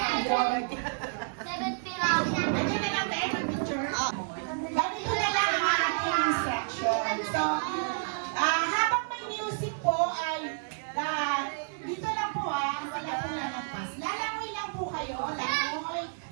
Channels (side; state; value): left; silent; digital silence